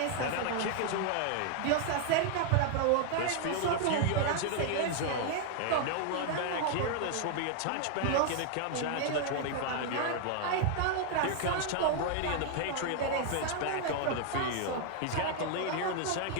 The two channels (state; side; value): different; both; correlation 0.00